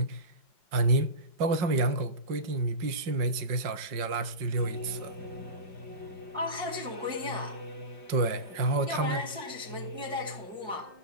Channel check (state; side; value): late; left; 5.5 ms